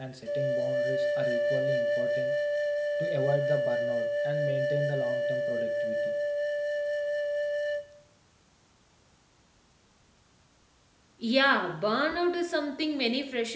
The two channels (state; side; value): identical; both; correlation 1.00